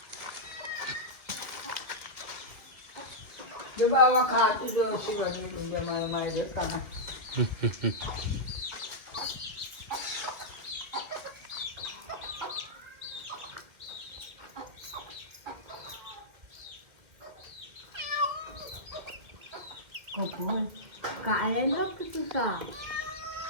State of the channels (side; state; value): left; late; 2.3 ms